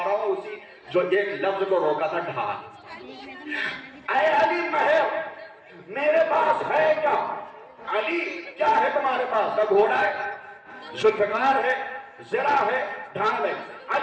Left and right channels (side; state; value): both; identical; correlation 1.00